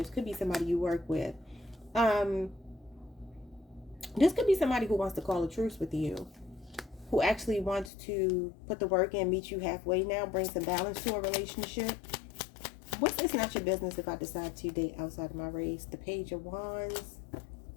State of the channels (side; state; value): right; drops out; at 7.9 s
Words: Could be somebody you work with. This could be somebody who wants to call a truce with you, who actually wants to put the work in, meet you halfway now, bring some balance to a relationship. It's not your business if I decide to date outside of my race. The Page of Wands,